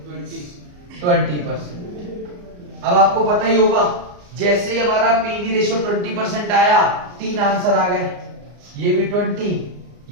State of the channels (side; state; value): left; late; 34 ms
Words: 20%। अब आपको पता ही होगा जैसे ही हमारा पीवी रेशियो 20% आया 3 आंसर आ गए, ये भी 20,